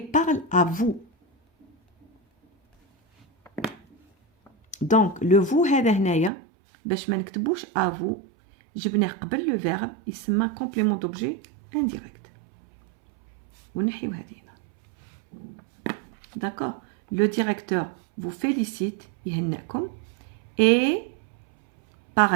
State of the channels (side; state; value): left; drops out; at 6.3 s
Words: à vous. Donc le vous هذا هنايا باش ما نكتبوش à vous جبناه قبل لو فيرب يسمى complément d'objet indirect. ونحيو هذه هنا. D'accord. Le directeur vous félicite يهنئكم et